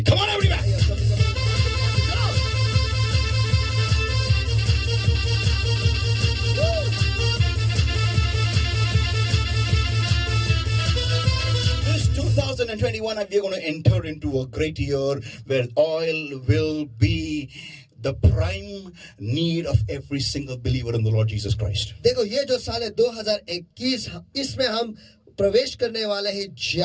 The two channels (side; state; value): both; identical; correlation 1.00